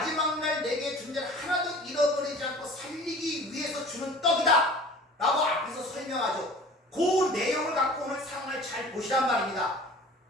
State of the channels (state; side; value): normal; both; correlation 0.44